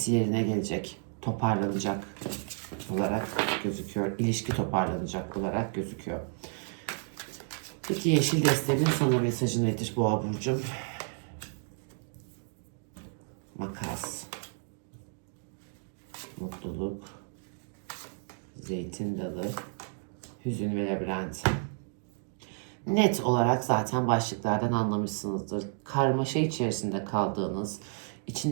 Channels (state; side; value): silent; left; 57 dB below the other